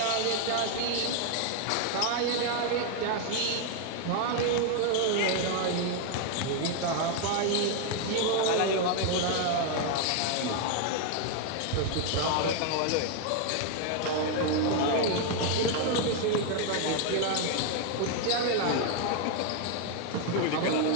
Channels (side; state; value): both; different; correlation 0.00